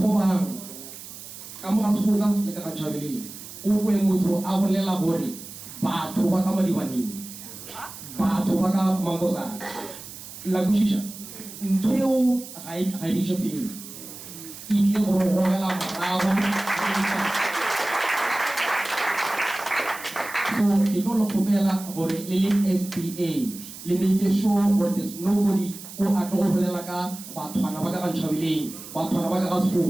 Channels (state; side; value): noise; right; hiss, 14 dB below the sound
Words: Kamu kan suka le ka chabili. Uwe mutu awale labori. Ba to ba kama diwani. Ba to ba ka mangosa. Lagu shisha. Nteo hai fili. Iki oro la marawa. So ito lo kubela bore lili FPA. Limike show or there's nobody o atlo bolela ka batho bana ba ka ntšhabileng batho bana ba ka